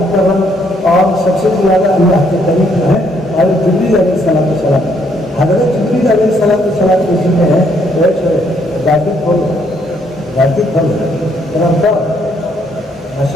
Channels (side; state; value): both; normal; correlation 0.70